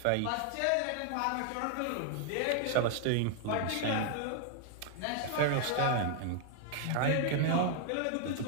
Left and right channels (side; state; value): both; different; correlation 0.00